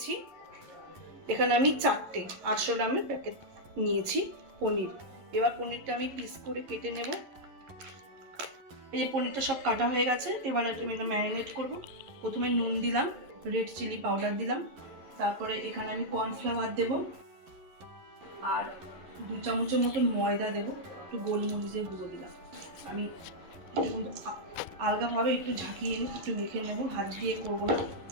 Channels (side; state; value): left; late; 11 ms